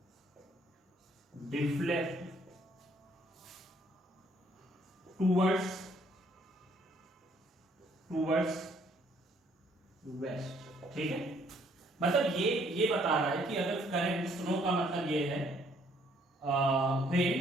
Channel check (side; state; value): both; normal; correlation 0.65